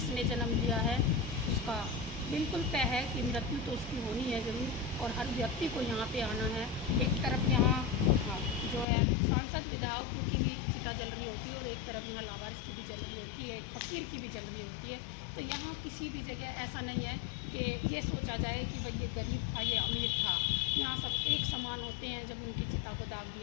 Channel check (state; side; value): drops out; right; at 8.8 s